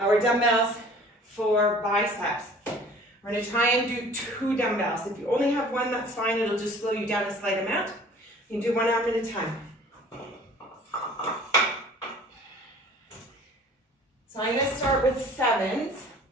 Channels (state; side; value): normal; both; correlation 0.49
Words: dumbbells for biceps. We're going to try and do 2 dumbbells. If you only have 1, that's fine. It'll just slow you down a slight amount. You can do 1 arm at a time. So I'm going to start with 7s.